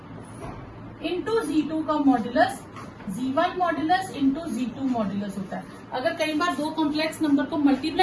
इंटू z2 का modulus z1 modulus into z2 modulus होता है। अगर कई बार दो कॉम्प्लेक्स नंबर को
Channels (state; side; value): identical; both; correlation 1.00